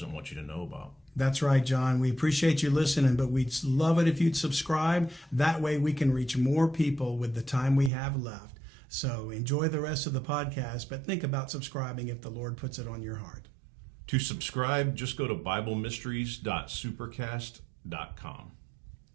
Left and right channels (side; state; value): left; drops out; at 7.9 s